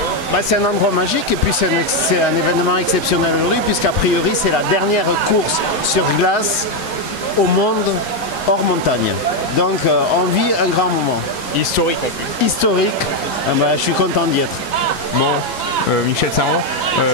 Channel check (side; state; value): both; normal; correlation 0.04